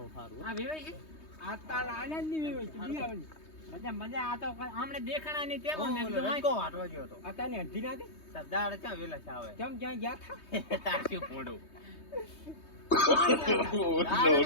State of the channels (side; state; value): right; late; 3.2 ms